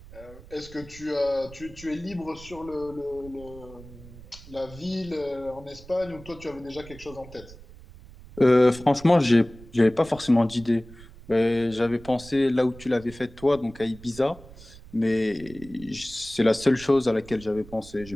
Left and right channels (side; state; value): right; noise; rumble, 19 dB below the sound